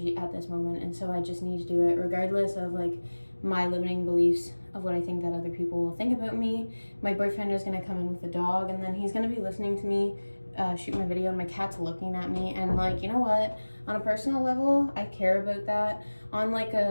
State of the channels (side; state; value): both; inverted; correlation -1.00